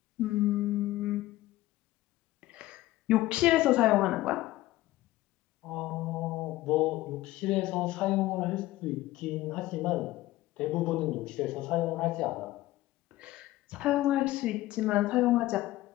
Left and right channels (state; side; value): quieter; right; 16.7 dB